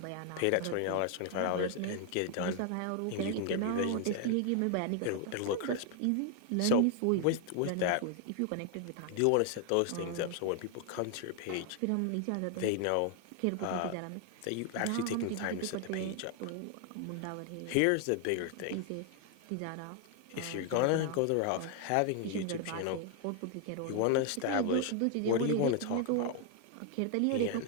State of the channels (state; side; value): different; both; correlation 0.00